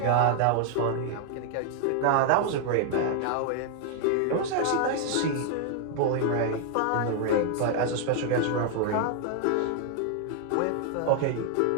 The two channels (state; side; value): different; both; correlation 0.00